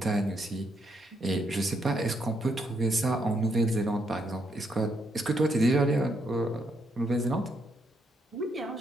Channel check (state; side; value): normal; both; correlation 0.76